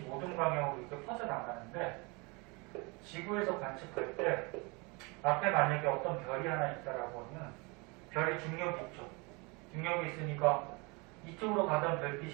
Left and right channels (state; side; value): quieter; left; 28.5 dB